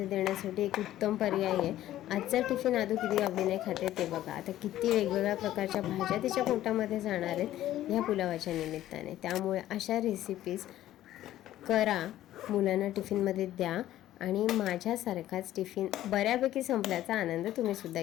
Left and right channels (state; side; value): quieter; right; 13.5 dB